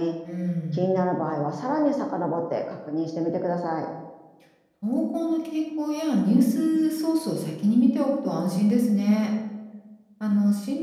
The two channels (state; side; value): identical; both; correlation 1.00